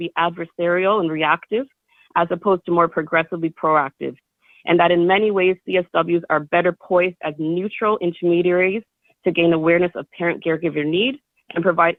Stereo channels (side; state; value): both; identical; correlation 1.00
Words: adversarial and reactive, as opposed to more progressively proactive, and that in many ways, CSWs are better poised as neutral intermediaries to gain awareness of parent caregiver need and provide